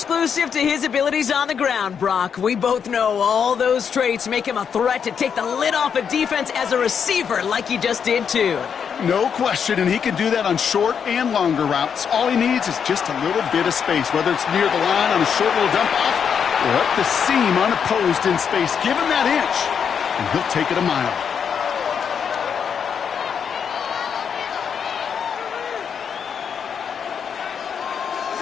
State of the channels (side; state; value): right; quieter; 7.2 dB